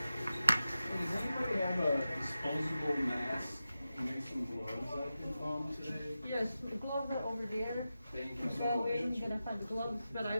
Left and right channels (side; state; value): both; inverted; correlation -0.92